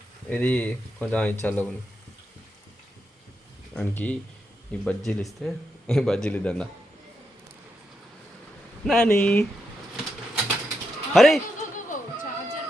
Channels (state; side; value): normal; both; correlation 0.84